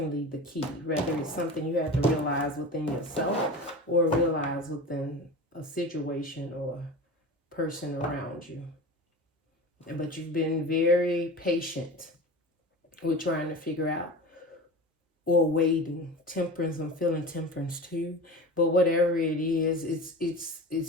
the key. Whether it's something you have to realize within yourself or realize within a situation or person around you. But you've been very patient with trying to figure out or waiting. Temperance, I'm feeling temperance too. But whatever it is,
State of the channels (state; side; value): normal; both; correlation 0.32